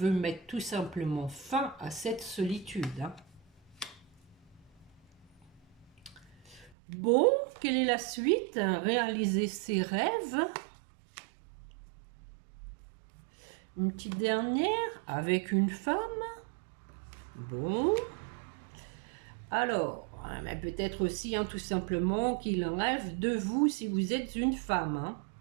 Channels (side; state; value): left; drops out; at 6.7 s